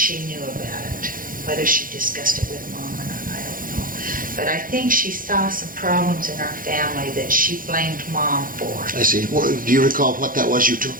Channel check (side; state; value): left; late; 0.40 ms